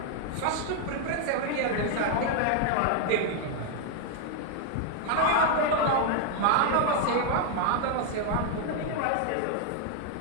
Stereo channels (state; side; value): different; both; correlation 0.00